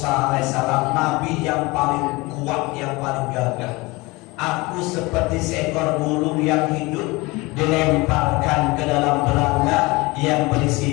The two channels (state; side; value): quieter; right; 23.6 dB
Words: alaihissalam, nabi yang paling kuat, yang paling gagah. Aku seperti seekor burung yang hidup dilemparkan ke dalam belanga yang